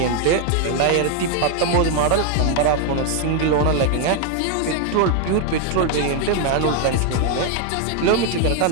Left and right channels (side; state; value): both; different; correlation 0.01